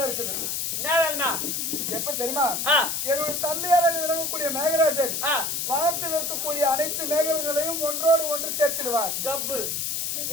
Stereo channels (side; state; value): left; noise; hiss, 1 dB below the sound